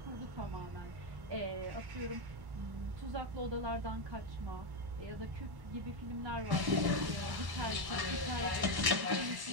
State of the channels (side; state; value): left; late; 1.1 ms